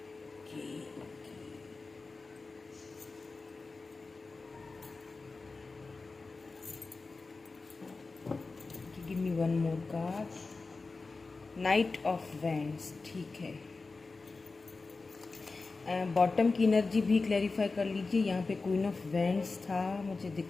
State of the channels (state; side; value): quieter; right; 3.9 dB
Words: Give me one more card. Night of wands. ठीक है, बॉटम की एनर्जी भी क्लैरिफाई कर लीजिए। यहाँ पे क्वीन ऑफ वैंड्स था, मुझे